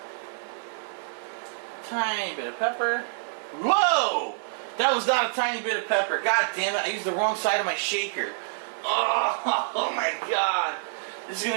Tiny bit of pepper. Whoa! That was not a tiny bit of pepper. God damn it, I used the wrong side of my shaker. Oh my god. This is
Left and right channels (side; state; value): left; silent; 60 dB below the other